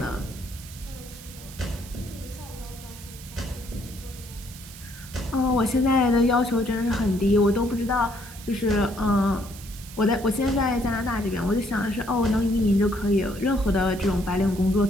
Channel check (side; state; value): right; noise; hiss, 17 dB below the sound